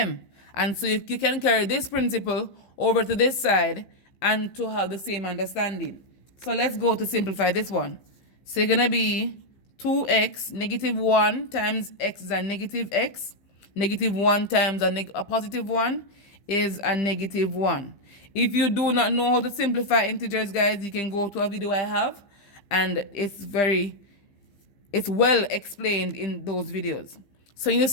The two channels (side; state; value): right; late; 15 ms